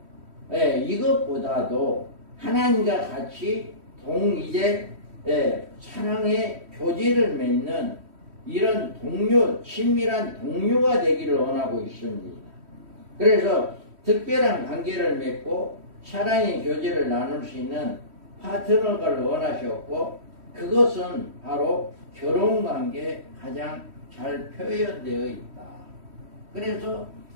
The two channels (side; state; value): left; late; 3.1 ms